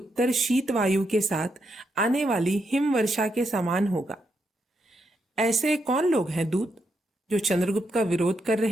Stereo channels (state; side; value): normal; both; correlation 0.81